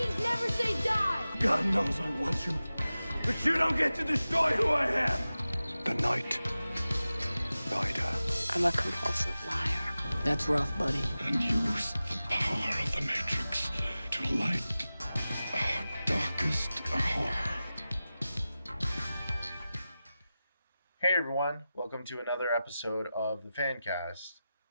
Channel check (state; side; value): inverted; both; correlation -0.95